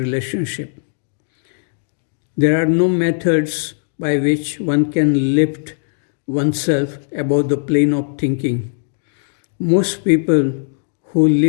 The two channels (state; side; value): silent; right; digital silence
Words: There are no methods by which one can lift oneself above the plane of thinking. Most people who